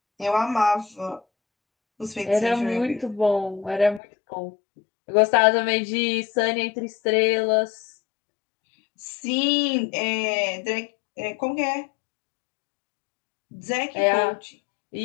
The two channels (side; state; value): right; drops out; at 4.0 s